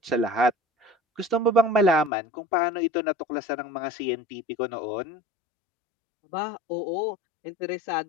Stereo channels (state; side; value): drops out; right; at 2.1 s